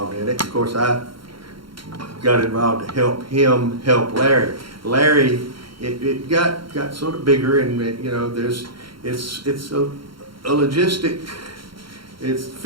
in it. Of course, I got involved to help him help Larry. Larry, it got sort of bigger, and it's a logistic, it's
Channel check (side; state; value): left; late; 0.73 ms